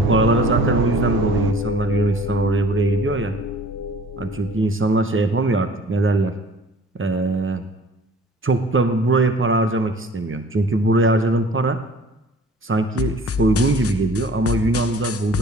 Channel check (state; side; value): normal; both; correlation 0.48